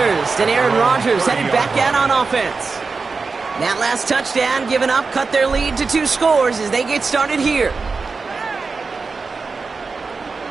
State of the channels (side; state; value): left; quieter; 4.5 dB